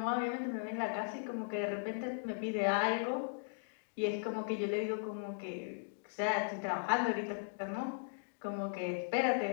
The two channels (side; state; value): right; silent; digital silence